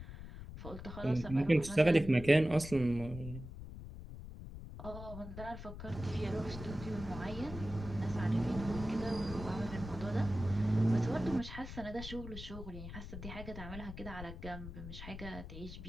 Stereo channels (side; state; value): left; noise; rumble, 11 dB below the sound